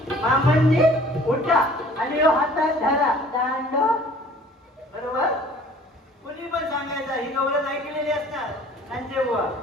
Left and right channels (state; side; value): normal; both; correlation 0.52